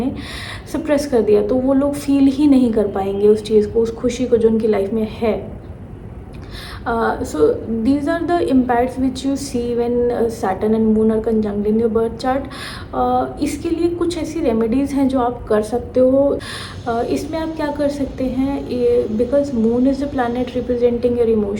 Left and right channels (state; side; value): identical; both; correlation 1.00